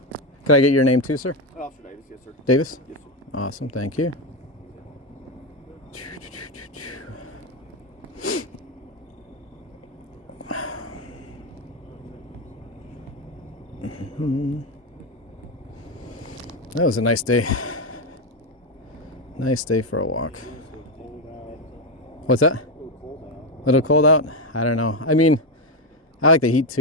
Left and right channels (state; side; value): normal; both; correlation 0.09